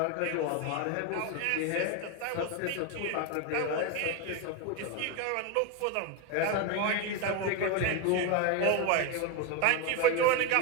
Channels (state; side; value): different; both; correlation 0.02